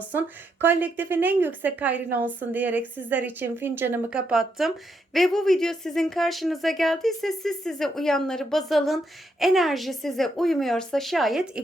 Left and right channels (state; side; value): normal; both; correlation 0.79